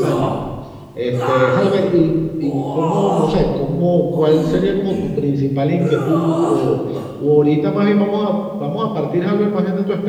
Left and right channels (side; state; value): both; identical; correlation 1.00